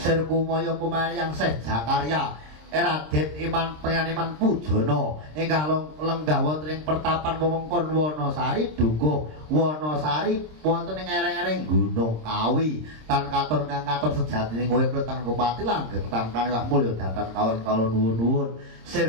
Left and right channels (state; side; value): late; left; 26 ms